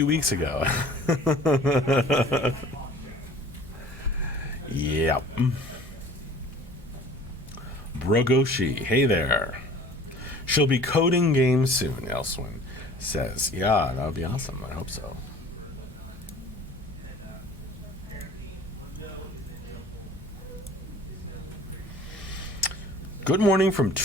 weeks ago. Yep. Brogoshi, hey there. She'll be coding games soon, Elswin says. Yeah, that would be awesome. I hope so. Good morning from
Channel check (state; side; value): normal; both; correlation 0.47